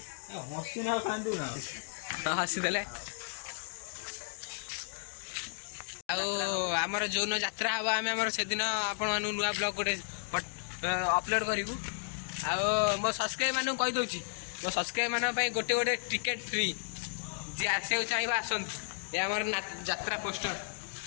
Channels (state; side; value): silent; right; digital silence